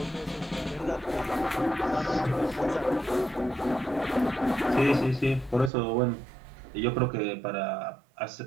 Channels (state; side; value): drops out; left; at 5.7 s